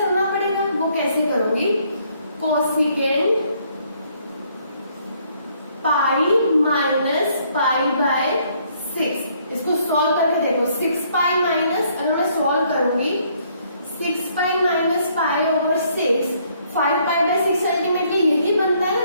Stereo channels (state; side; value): inverted; both; correlation -0.67